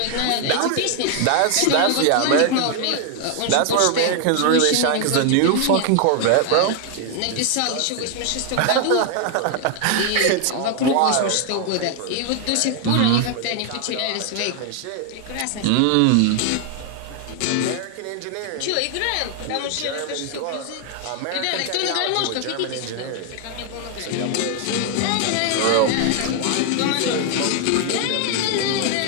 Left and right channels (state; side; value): different; both; correlation 0.00